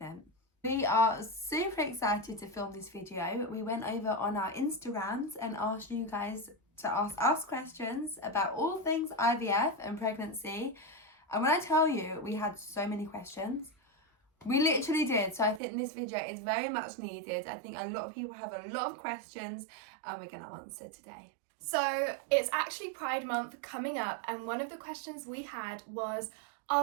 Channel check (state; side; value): drops out; left; at 15.6 s